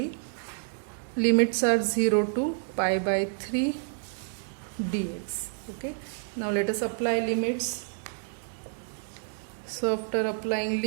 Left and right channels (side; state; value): left; silent; digital silence